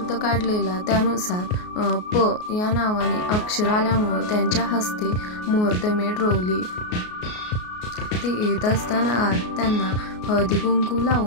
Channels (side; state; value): right; late; 33 ms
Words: काढलेला त्यानुसार प या नावाने अक्षर आल्यामुळे त्यांच्या हस्ते मुहूर्तमेढ रोवली। ते येत असताना आत त्यांना हळदी कुंकू